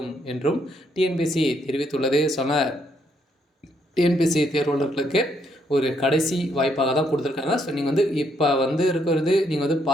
என்றும் டிஎன்பிஎஸ்சி தெரிவித்துள்ளது. டிஎன்பிஎஸ்சி தேர்வாளர்களுக்கு ஒரு கடைசி வாய்ப்பாக தான் கொடுத்துருக்காங்க. ஸோ நீங்கள் இப்போ இருக்கிறது நீங்கள்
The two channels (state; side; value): normal; both; correlation 0.73